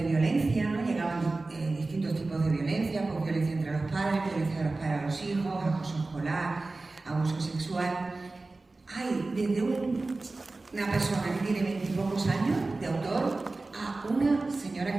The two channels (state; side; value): quieter; left; 3.3 dB